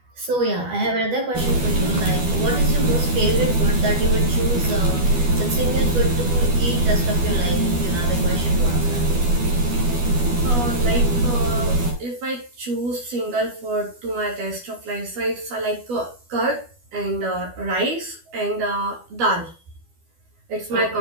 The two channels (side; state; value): left; late; 12 ms